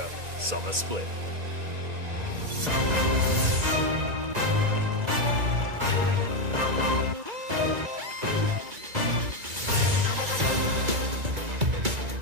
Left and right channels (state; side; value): late; left; 1.9 ms